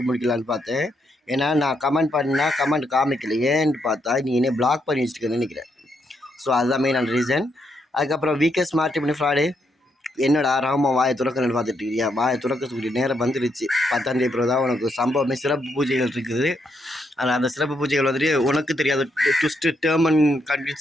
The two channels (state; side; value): normal; both; correlation 0.78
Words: முடிக்கலான்னு பார்த்தேன். ஏன்னா நான் கமெண்ட் பண்ணால் கமெண்ட் காமிக்கல. ஏன்னு பார்த்தா நீ என்ன பிளாக் பண்ணி வச்சுருக்கேன்னு நினைக்கிறேன். ஸோ அதுதான் மெயின் ரீசன். அதுக்கப்புறம் வீக்கெஸ்ட் மாற்றி பண்ணி ஃப்ராடு. என்னடா ராமா வாயை துறக்கணும்னு பார்த்துட்டு இருக்கியா? வாயை துறக்கக்கூடிய நேரம் வந்துருச்சு. 10ஆம் தேதி பிறகு தான் உனக்கு சம்பவமே சிறப்பு பூஜைகள் இருக்குது. ஆனால் அந்த சிறப்பு பூஜைகள் வந்துட்டு உனக்கு தெரியாத ட்விஸ்ட்டு டேர்ம் அண்ட்